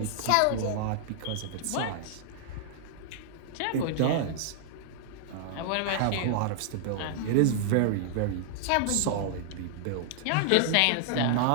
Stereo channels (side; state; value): both; different; correlation -0.01